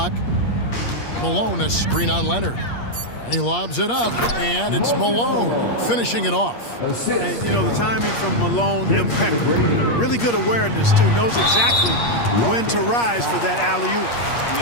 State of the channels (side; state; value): right; late; 8.5 ms